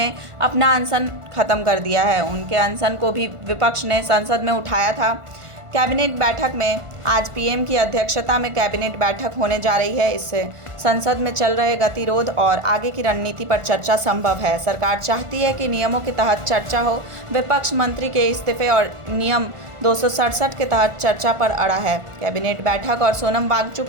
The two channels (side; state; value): left; late; 1.5 ms